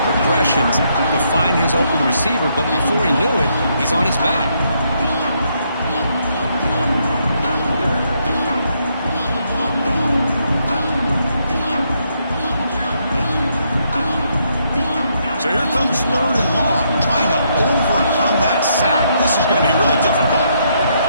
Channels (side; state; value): both; inverted; correlation -0.75